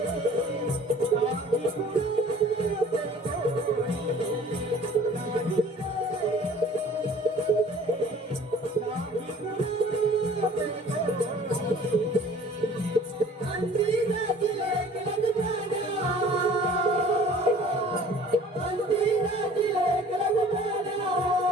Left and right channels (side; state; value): both; normal; correlation 0.50